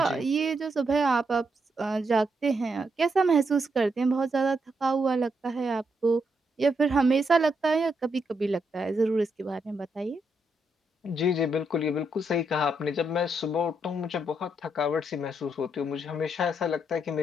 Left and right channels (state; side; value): normal; both; correlation 0.79